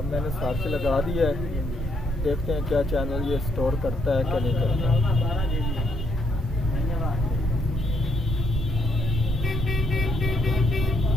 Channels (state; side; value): normal; both; correlation 0.73